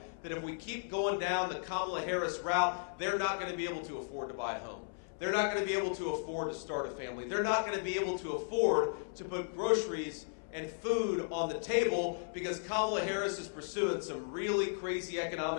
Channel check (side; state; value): right; silent; 54 dB below the other